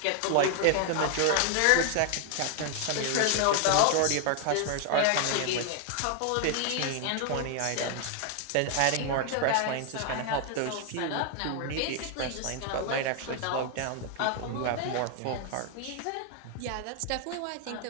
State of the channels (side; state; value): both; different; correlation 0.00